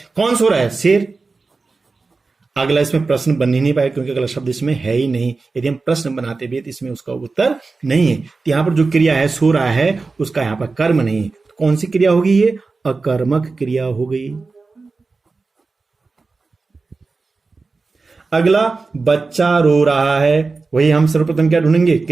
कौन सो रहा है? शेर। अगला इसमें प्रश्न बन ही नहीं पाए क्योंकि अगला शब्द इसमें है ही नहीं। यदि हम प्रश्न बनाते भी तो इसमें उसका उत्तर नहीं है। तो यहां पर जो क्रिया है सो रहा है, उसका यहां पर कर्म नहीं है। तो कौन सी क्रिया होगी? ये अकर्मक क्रिया हो गई। अगला, बच्चा रो रहा है। वही हम सर्वप्रथम क्या ढूंढेंगे?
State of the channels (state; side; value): quieter; left; 4.0 dB